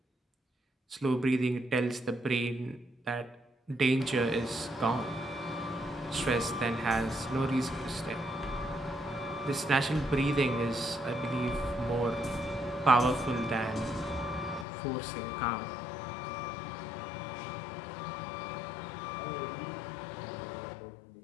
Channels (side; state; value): right; drops out; at 14.7 s